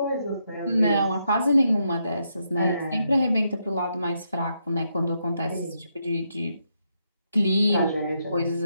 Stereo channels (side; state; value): both; inverted; correlation -0.80